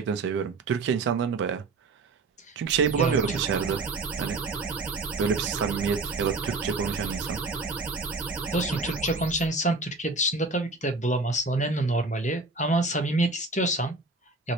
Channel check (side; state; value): left; quieter; 3.4 dB